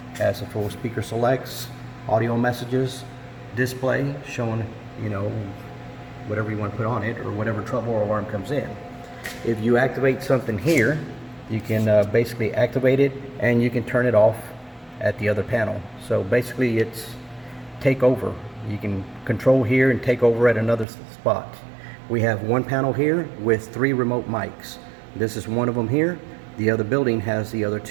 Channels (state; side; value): drops out; left; at 20.9 s